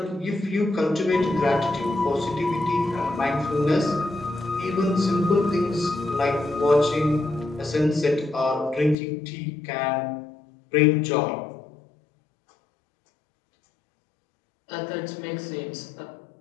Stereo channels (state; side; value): drops out; right; at 9.0 s